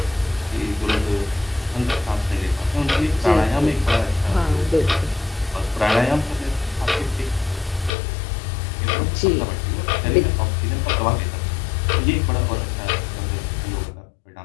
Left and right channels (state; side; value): drops out; right; at 7.9 s